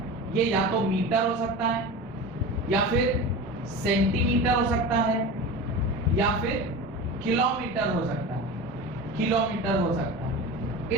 ये या तो मीटर हो सकता है या फिर सेंटीमीटर हो सकता है या फिर किलोमीटर हो सकता है, किलोमीटर हो सकता है।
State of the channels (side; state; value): both; normal; correlation 0.30